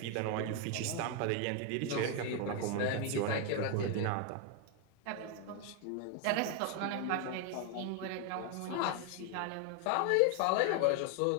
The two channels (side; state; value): both; different; correlation 0.01